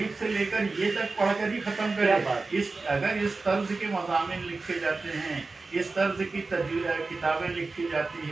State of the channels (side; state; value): left; quieter; 3.8 dB